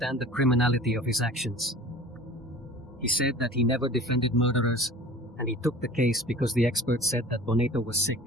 the criminality of his actions. He said that he never defended murderers, and he took the case because the experts said that Bonetto was sick,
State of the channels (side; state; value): both; normal; correlation 0.43